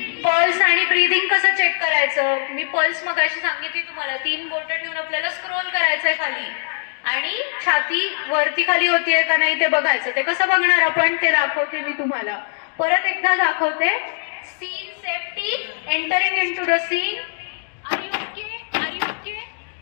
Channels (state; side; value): silent; right; digital silence